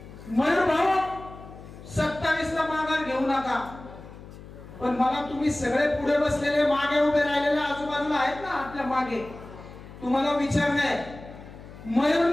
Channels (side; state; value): left; noise; hum, 16 dB below the sound